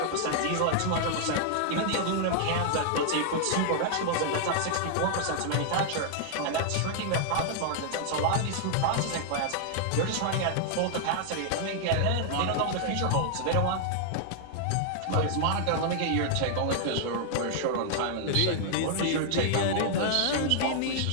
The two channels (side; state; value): both; different; correlation -0.01